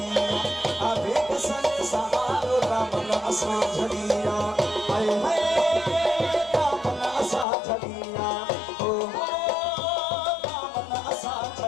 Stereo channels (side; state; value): right; drops out; at 7.5 s